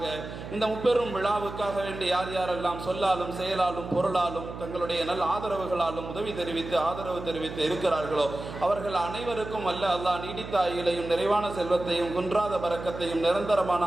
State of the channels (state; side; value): noise; right; hum, 10 dB below the sound